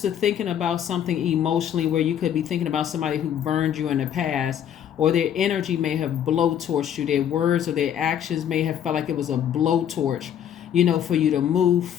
to thinking about something emotionally where you could be thinking about somebody who burned you in the past, or their energy may have blowtorched you. Their words or their actions may have felt like it was a blowtorch, for you to move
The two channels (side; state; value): right; quieter; 9.6 dB